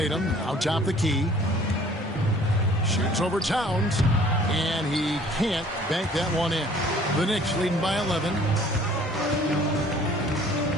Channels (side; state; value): both; normal; correlation 0.54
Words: out top the key. Shoots over Towns. And he can't bank that one in. The Knicks leading by 11.